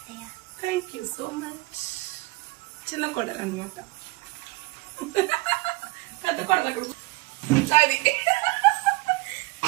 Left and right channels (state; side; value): quieter; left; 23.4 dB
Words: Thank you so much. చిన్న కోడలు అనమాట, పెద్ద కోడలు అక్కడ. అది